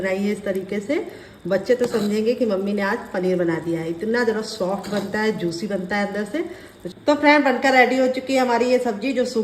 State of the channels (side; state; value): both; identical; correlation 1.00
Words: है इस तरीके से। बच्चे तो समझेंगे कि मम्मी ने आज पनीर बना दिया है। इतना ज़रा सॉफ्ट बनता है, जूसी बनता है अंदर से। तो फ्रेंड बनकर रेडी हो चुकी है हमारी ये सब्जी जो